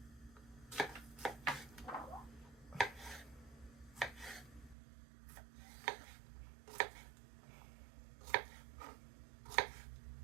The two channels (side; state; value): left; drops out; at 4.8 s